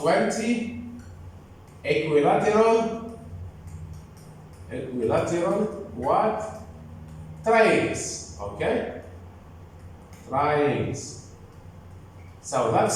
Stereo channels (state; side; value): identical; both; correlation 1.00